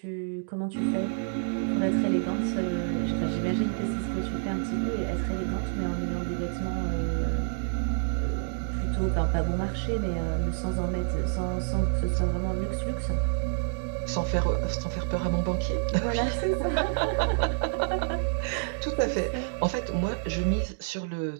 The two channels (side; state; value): left; silent; digital silence